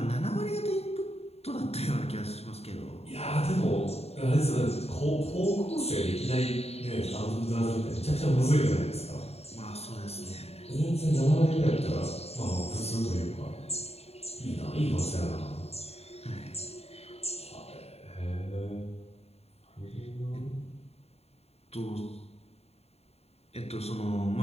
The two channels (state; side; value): late; right; 0.30 ms